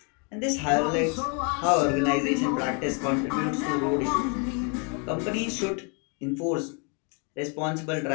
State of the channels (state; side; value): quieter; right; 36.5 dB